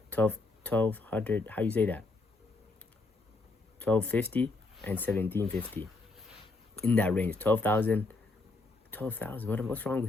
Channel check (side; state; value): right; quieter; 3.3 dB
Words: 1200. How you say that? 1250 and 1750 in that range. 12,000. What's wrong